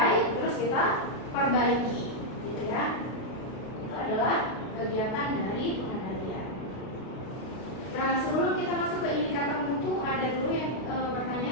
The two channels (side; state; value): right; late; 32 ms